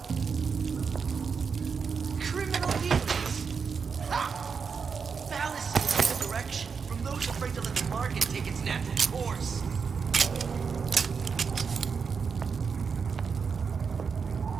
Criminal dealings! Ha! Fallacy in the direction from those afraid to let the market take its natural course.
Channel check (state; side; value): quieter; left; 5.8 dB